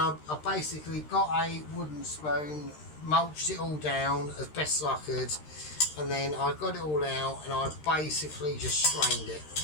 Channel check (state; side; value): late; right; 13 ms